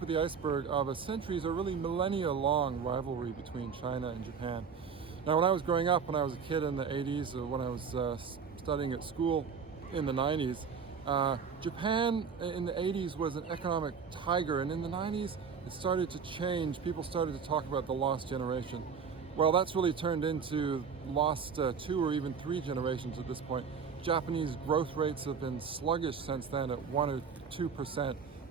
of the iceberg of a centuries or really millennia-long rivalry between China and Japan. Now, when I was growing up, when I was a kid in the 80s, or when I was studying at school in the 90s, Japan in the 80s was an economic tiger, and in the 90s it started to change. People started to talk about the lost generation. Well, that's really turned into lost 2 or even 3 generations at this point. Japanese growth rates have been sluggish since then at 1 or 2%,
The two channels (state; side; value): quieter; left; 6.2 dB